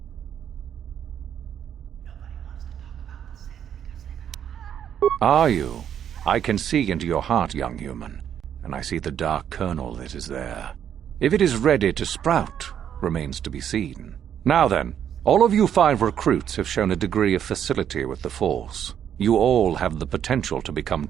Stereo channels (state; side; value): quieter; left; 9.3 dB